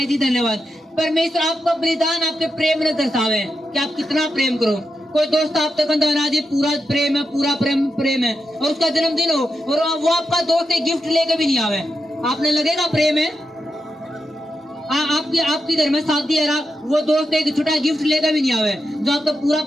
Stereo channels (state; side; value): normal; both; correlation 0.87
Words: जी धन्यवाद। परमेश्वर आपका बलिदान आपके प्रेम ने दर्शावे कि आप कितना प्रेम करो। कोई दोस्त आप तक ना जी पूरा प्रेम है, पूरा प्रेम है, और उसका जन्मदिन हो और वो आपका दोस्त एक गिफ्ट लेके भी नहीं आवे, आपने लगेगा प्रेम है? आपकी घर में शादी है, वो दोस्त एक छोटा गिफ्ट लेकर भी नहीं आवे, जो आपका पूरा